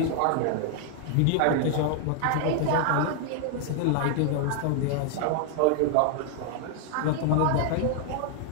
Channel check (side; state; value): both; different; correlation 0.00